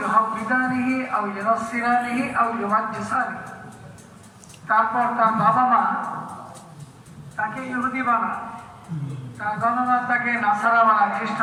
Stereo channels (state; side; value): identical; both; correlation 1.00